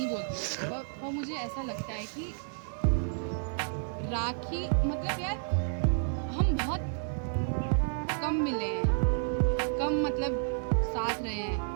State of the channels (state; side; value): silent; left; digital silence